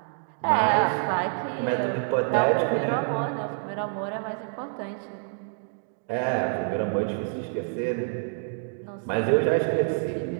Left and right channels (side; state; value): left; silent; digital silence